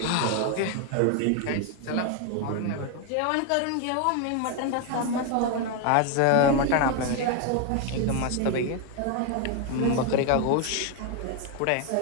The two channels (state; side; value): different; both; correlation 0.01